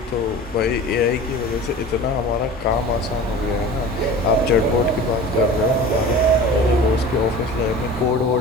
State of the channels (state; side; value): normal; both; correlation 0.38